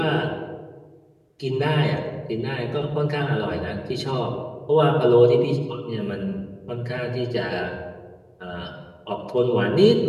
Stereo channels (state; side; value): identical; both; correlation 1.00